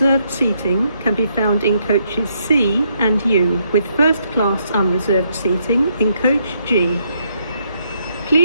seating can be found in coaches C and U, with first class unreserved seating in coach G.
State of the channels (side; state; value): both; inverted; correlation -0.74